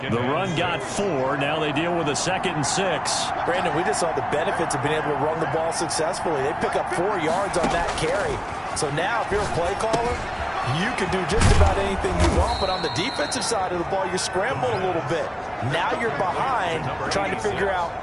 The run got 4. Now they deal with a 2nd and 6. Brandon, we just saw the benefits of being able to run the ball successfully. They pick up 4 yards on that carry. So now if you're a play caller, you can do just about anything you want. But on the defensive side of the ball, you're scrambling a little bit. Now you're behind trying to figure out,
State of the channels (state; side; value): identical; both; correlation 1.00